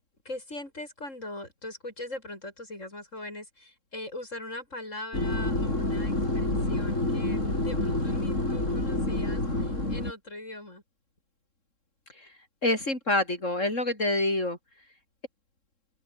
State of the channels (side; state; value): right; late; 3.7 ms